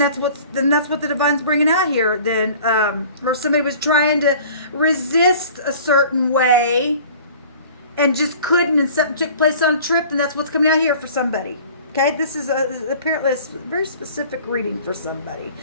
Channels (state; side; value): inverted; both; correlation -0.47